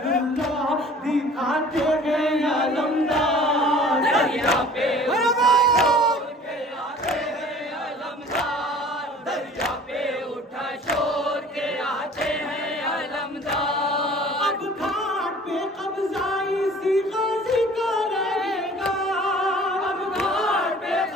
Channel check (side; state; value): both; normal; correlation 0.48